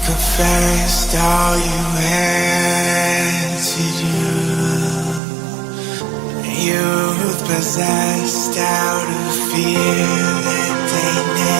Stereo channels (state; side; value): drops out; left; at 5.2 s